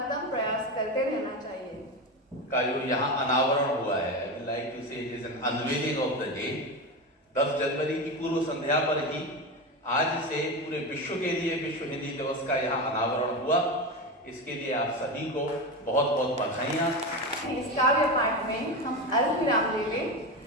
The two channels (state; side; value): normal; both; correlation 0.19